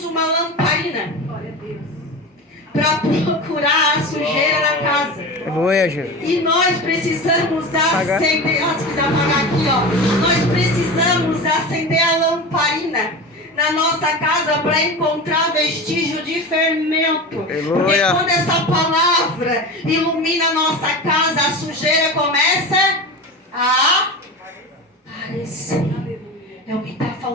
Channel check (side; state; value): both; normal; correlation 0.28